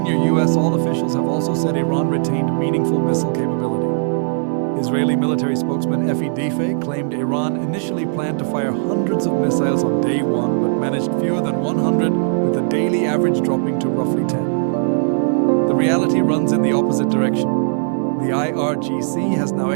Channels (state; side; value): silent; left; digital silence